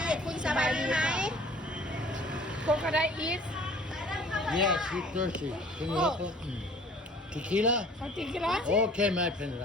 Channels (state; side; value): normal; both; correlation 0.51